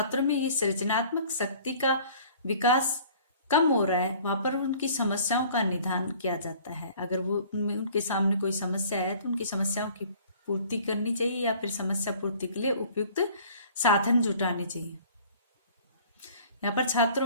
में ये सृजनात्मक शक्ति का विकास कम हो रहा है वहां पर उनकी समस्याओं का निदान किया जाता है। अगर वो उनके सामने कोई समस्या है तो उनकी समस्याओं की पूर्ति करनी चाहिए या फिर समस्या पूर्ति के लिए उपयुक्त साधन जुटाने चाहिए। यहाँ पर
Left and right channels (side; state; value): both; inverted; correlation -0.51